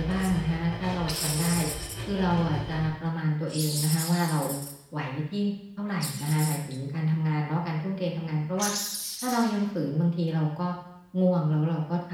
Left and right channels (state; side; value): identical; both; correlation 1.00